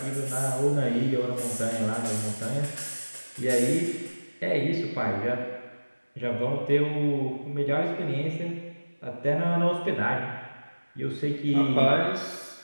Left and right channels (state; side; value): inverted; both; correlation -1.00